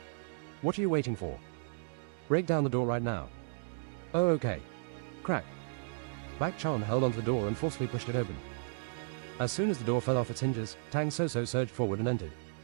What are you waiting for? Break down the door right now. Oh, okay. Crack. Bak Chan held onto the door and forcefully pushed it open. As soon as the door fell off its hinges, Tang Soso surged forward and entered.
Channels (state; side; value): silent; left; digital silence